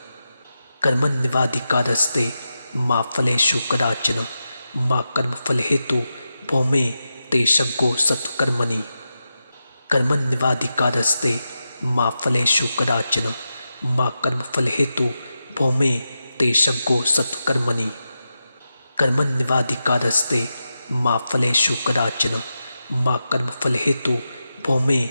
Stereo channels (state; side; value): inverted; both; correlation -0.90